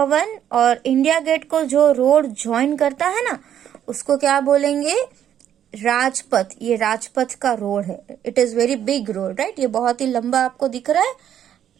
और इंडिया गेट को जो रोड ज्वाइन करता है ना, उसको क्या बोलेंगे, राजपथ. ये राजपथ का रोड है, it is very big road, right. ये बहुत ही लंबा आपको दिख रहा है,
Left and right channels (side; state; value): left; quieter; 10.1 dB